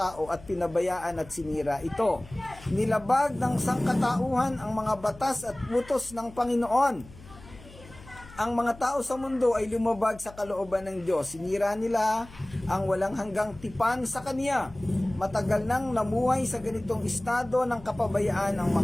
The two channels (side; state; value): left; noise; hum, 19 dB below the sound